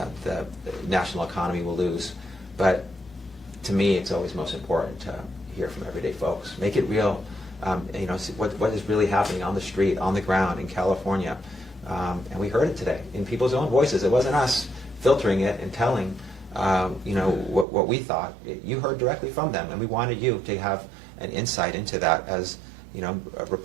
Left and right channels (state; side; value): drops out; left; at 17.7 s